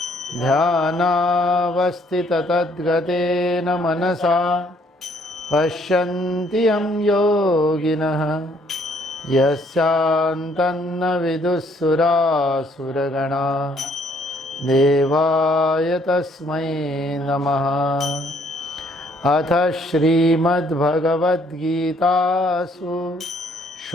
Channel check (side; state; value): both; normal; correlation 0.65